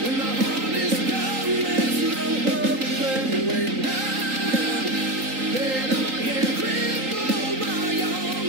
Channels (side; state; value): left; late; 3.8 ms